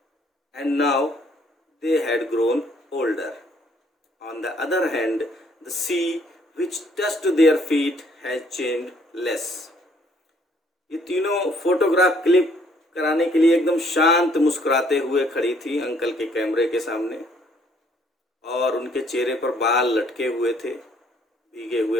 and now they had grown older. On the other hand, the sea which touched their feet has changed less. ये तीनों photograph click कराने के लिए एकदम शांत मुस्कुराते हुए खड़ी थी अंकल के कैमरे के सामने, और उनके चेहरे पर बाल लटके हुए थे, भीगे हुए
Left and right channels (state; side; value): normal; both; correlation 0.64